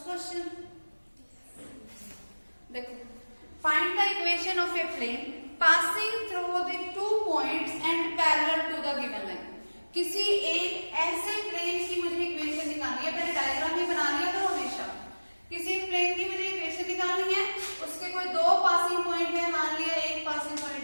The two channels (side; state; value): both; inverted; correlation -1.00